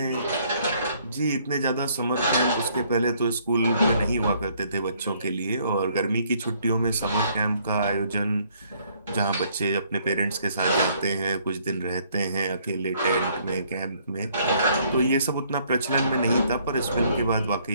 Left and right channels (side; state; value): both; inverted; correlation -0.65